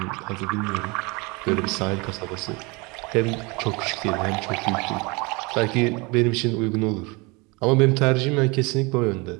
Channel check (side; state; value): left; quieter; 27.1 dB